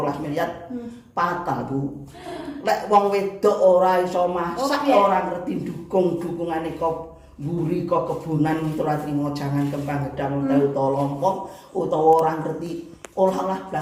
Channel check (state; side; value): identical; both; correlation 1.00